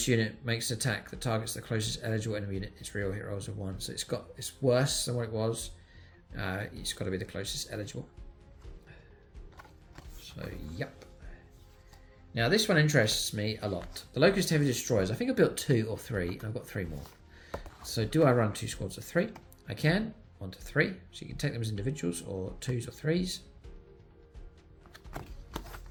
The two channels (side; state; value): both; identical; correlation 1.00